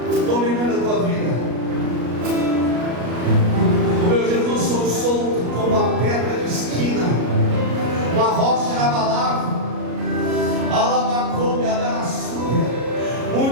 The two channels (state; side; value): late; left; 33 ms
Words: dominando a tua vida? O meu Jesus sou solto como uma pedra de esquina, uma rocha inabalável. Alabacoube, adarassuia.